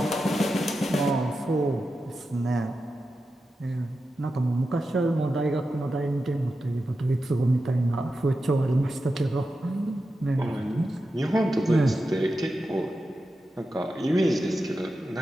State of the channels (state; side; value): normal; both; correlation 0.90